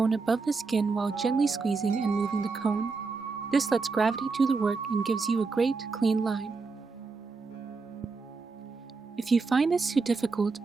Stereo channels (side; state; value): left; quieter; 4.3 dB